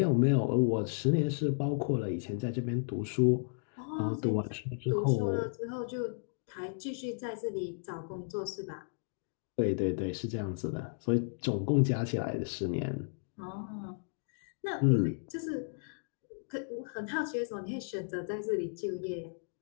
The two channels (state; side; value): silent; right; digital silence